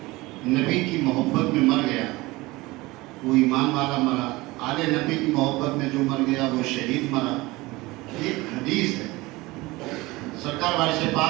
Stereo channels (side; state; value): left; quieter; 21.1 dB